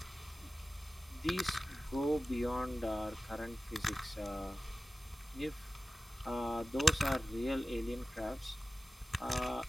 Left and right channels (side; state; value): both; normal; correlation 0.96